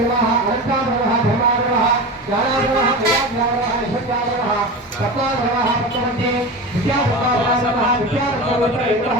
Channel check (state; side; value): normal; both; correlation 0.27